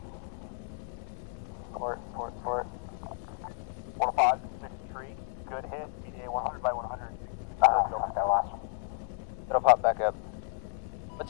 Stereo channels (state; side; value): silent; right; 56 dB below the other